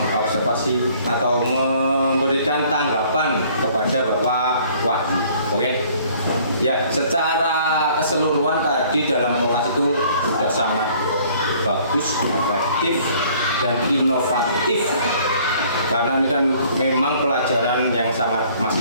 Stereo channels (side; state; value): both; inverted; correlation -0.57